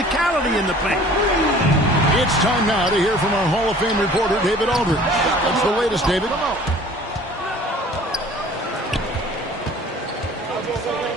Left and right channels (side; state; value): both; normal; correlation 0.49